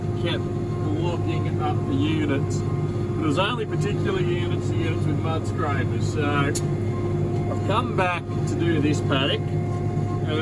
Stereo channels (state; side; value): identical; both; correlation 1.00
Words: kept blocking up the units. But it was only particular units with mud scrapers. So I've come back to do this paddock,